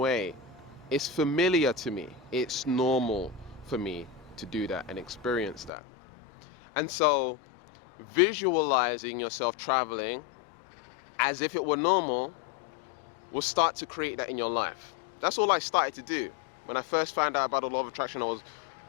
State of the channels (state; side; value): drops out; right; at 5.7 s